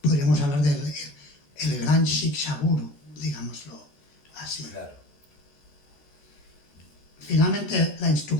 podríamos hablar del el gran Shiksha Guru, digámoslo así. Claro. Finalmente la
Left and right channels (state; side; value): late; right; 14 ms